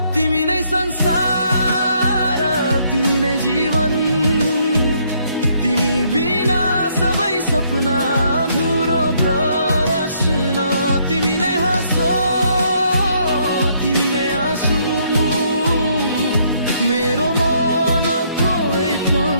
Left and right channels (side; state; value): both; inverted; correlation -0.69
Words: तिमी नै संसार तिमी नै जीवन तिमी बिना सबै सपना अधुरो प्रश्न तिमी नै हाँसो तिमी नै आँसु मेरो मनको एक